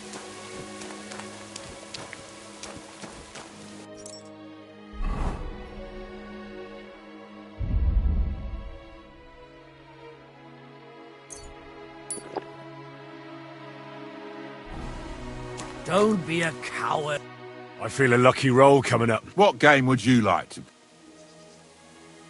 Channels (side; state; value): both; identical; correlation 1.00